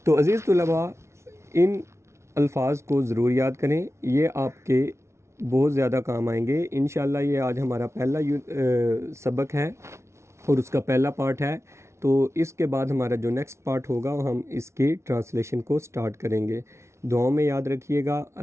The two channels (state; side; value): late; left; 0.13 ms